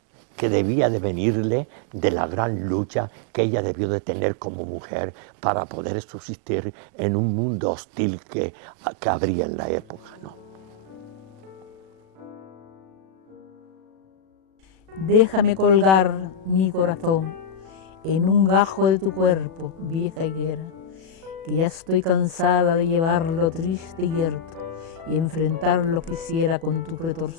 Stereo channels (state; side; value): late; left; 37 ms